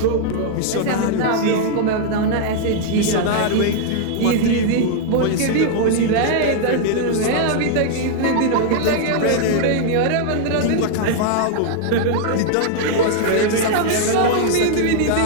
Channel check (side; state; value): both; different; correlation -0.01